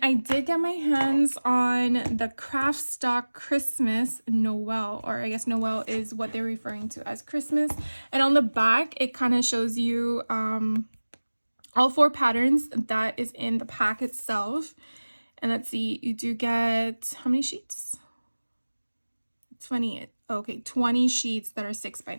I did get my hands on the Craft Stock Christmas Noel, or I guess Noel is what they're referring to as Christmas. And on the back, it kind of shows you all 4 patterns that is in the pack itself. And let's see, you do get, how many sheets? 20, okay, 20 sheets that are 6 by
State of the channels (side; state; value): both; inverted; correlation -1.00